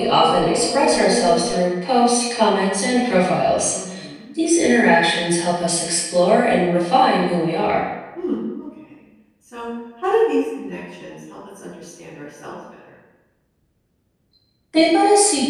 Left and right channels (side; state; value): both; identical; correlation 1.00